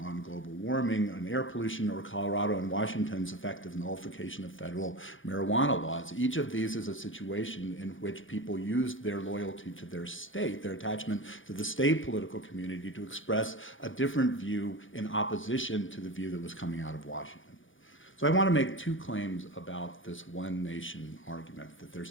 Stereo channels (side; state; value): right; late; 0.57 ms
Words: on global warming and air pollution, or Colorado and Washington's effective nullification of federal marijuana laws. Each of these is a situation in which people used their loyalty to their state, their attachment to the state political community, to express a different view in opposition to the view that was coming out of Washington. So I want to make two claims about this one nation argument, that